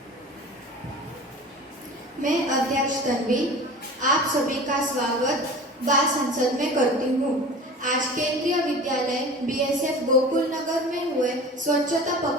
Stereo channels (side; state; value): both; normal; correlation 0.38